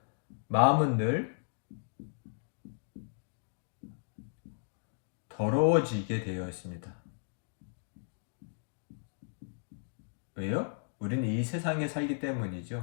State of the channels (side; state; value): right; silent; digital silence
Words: 마음은 늘 더러워지게 되어 있습니다. 왜요? 우리는 이 세상에 살기